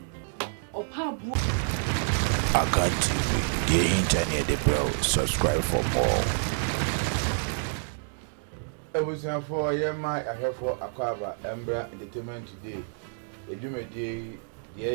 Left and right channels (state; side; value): silent; left; digital silence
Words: opabu. Akan TV, the internet, the bro. Subscribe for more. Everything for my I have for Akwaba Embra Entertainment today. A Jumedi,